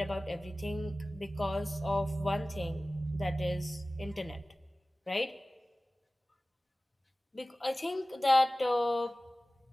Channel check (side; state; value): both; normal; correlation 0.97